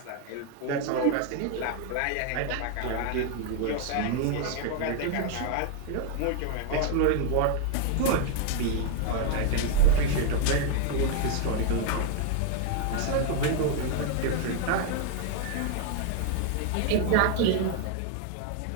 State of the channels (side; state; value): both; different; correlation 0.00